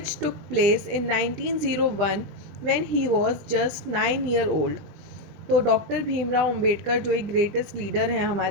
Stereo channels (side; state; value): left; late; 20 ms